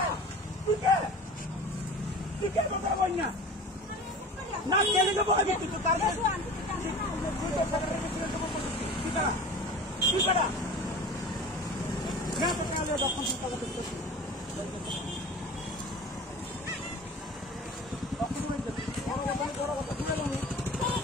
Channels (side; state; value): both; normal; correlation 0.38